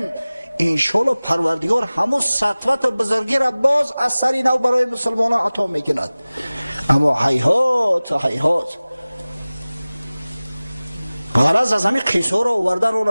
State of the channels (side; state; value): both; inverted; correlation -0.99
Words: انشالله پروردگار همون سطوت و بزرگی را باز از سری نو برای مسلمان عطا میکند. اما هیهات غرض از همین قصه را آوردن اون